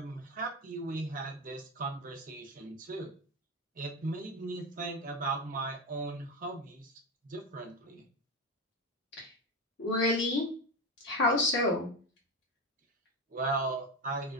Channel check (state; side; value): normal; both; correlation 0.15